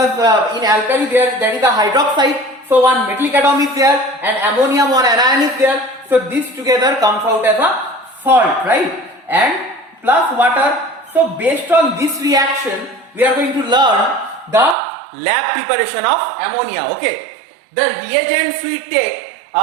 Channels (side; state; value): left; drops out; at 14.8 s